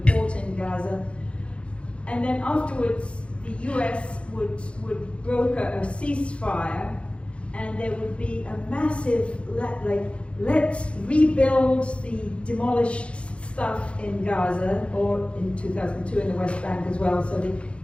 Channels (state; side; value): late; right; 0.059 ms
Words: port in Gaza. And then afterwards, the US would broker a ceasefire, and there would be a massive, let's rebuild the demolished stuff in Gaza, or in 2002 in the West Bank as well. So the